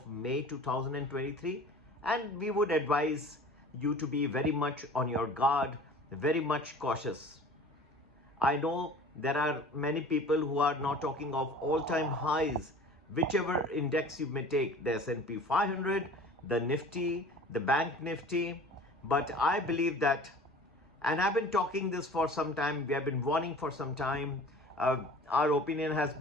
May 2023, and we would advise you to be very much on your guard, very much cautious. I know there are many people who are now talking of all-time highs, whichever index you may take, the S&P 500, the Nifty, the Bank Nifty, but I believe that, and I've been talking this for some time, we have been warning for some time, our opinion has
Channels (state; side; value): normal; both; correlation 0.43